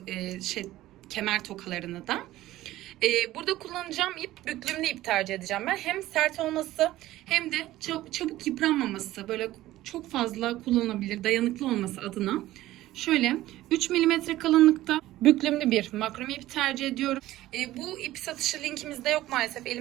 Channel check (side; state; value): left; quieter; 15.6 dB